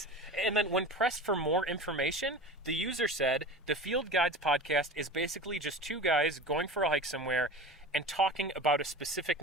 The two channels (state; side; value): normal; both; correlation 0.32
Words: And then when pressed for more information, the user said, the Field Guides podcast is basically just two guys going for a hike somewhere and talking about a specific